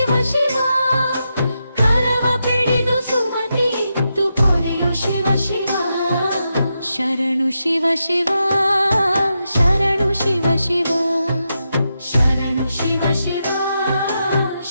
ಶಿವ ಕರವ ಪಿಡಿದು ಸುಮತಿ ಇತ್ತು ಪೊರೆಯೋ ಶಿವ ಶಿವ ಶರಣು ಶಿವ ಶಿವ ಶರಣು ಶಿವ ಶಿವ ಶರಣು ಶಿವ ಶಿವ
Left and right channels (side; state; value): both; inverted; correlation -0.86